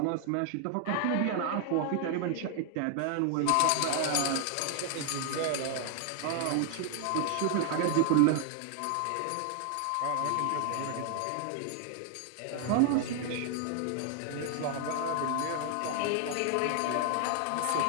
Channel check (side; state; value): both; different; correlation 0.00